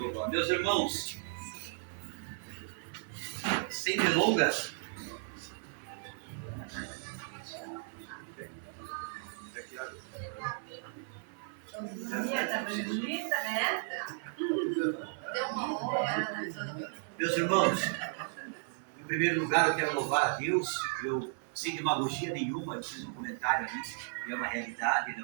Meus irmãos, sem delongas, meus irmãos, em primeiro lugar eu quero louvar a Deus. Eu, sem demagogia nenhuma, eu fiz um comentário ali, e é uma realidade, ainda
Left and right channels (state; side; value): silent; left; 55 dB below the other